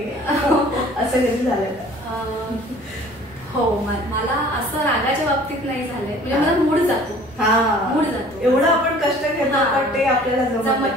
असं कधी झालंय का? हो, मला असं रागाच्या बाबतीत नाही झालंय. म्हणजे मला मूड जातो, एवढं आपण कष्ट घेतो पण ते आपल्याला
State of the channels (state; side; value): noise; left; rumble, 27 dB below the sound